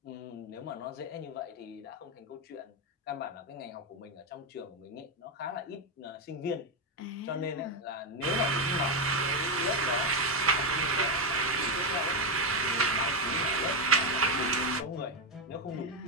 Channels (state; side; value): normal; both; correlation 0.07